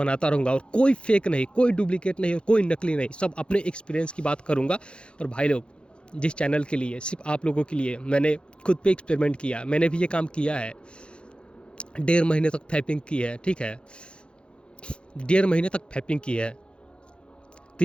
रहूँगा, और कोई फेक नहीं, कोई डुप्लीकेट नहीं और कोई नकली नहीं, सब अपने एक्सपीरियंस की बात करूँगा। और भाई लोग, जिस चैनल के लिए, सिर्फ आप लोगों के लिए मैंने खुद पे एक्सपेरिमेंट किया, मैंने भी ये काम किया है। 1.5 महीने तक फैपिंग की है, ठीक है, 1.5 महीने तक फैपिंग की है,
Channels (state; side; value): late; right; 0.055 ms